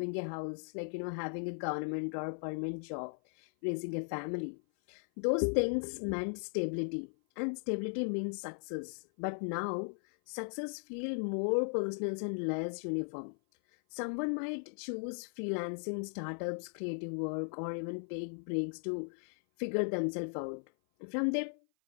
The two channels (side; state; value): right; silent; 53 dB below the other